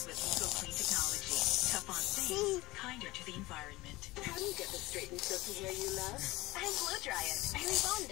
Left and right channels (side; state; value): right; quieter; 20.1 dB